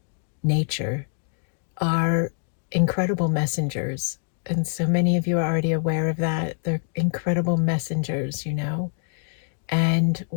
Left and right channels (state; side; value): silent; right; digital silence